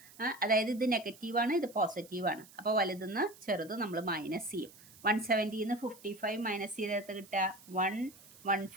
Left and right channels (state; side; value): noise; right; hiss, 22 dB below the sound